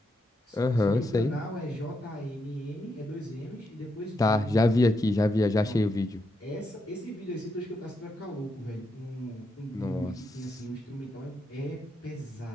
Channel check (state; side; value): normal; both; correlation 0.82